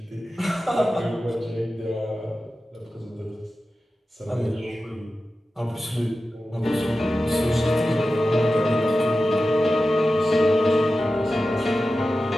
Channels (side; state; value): both; normal; correlation 0.93